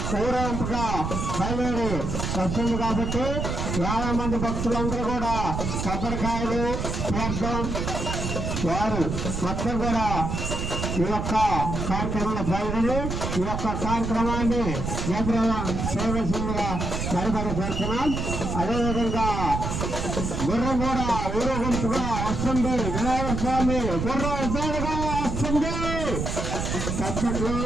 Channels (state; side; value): noise; right; rumble, 2 dB below the sound